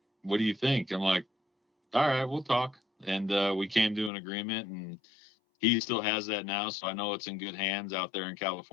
what do you think?" I'm like, "All right, we'll talk." And we came to an agreement, and he still has that now, so I know it's in good hands out there in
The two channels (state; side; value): drops out; right; at 4.1 s